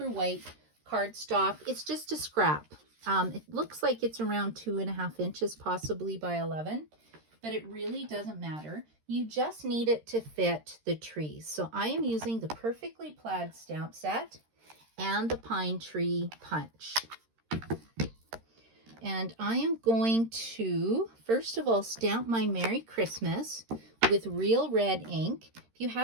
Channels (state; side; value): late; left; 13 ms